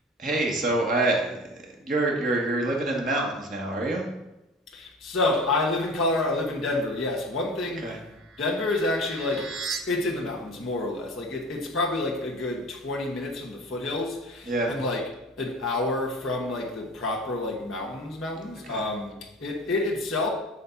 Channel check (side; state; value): both; normal; correlation 0.38